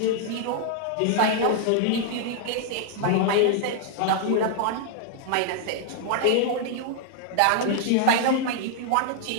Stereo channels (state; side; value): different; both; correlation -0.01